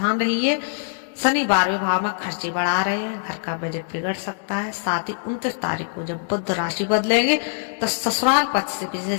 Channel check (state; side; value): silent; right; digital silence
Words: रहिए। शनि 12वें भाव में खर्चे बढ़ा रहे हैं, घर का बजट बिगड़ सकता है। साथ ही 29 तारीख को जब बुध राशि बदलेंगे तो ससुराल पक्ष से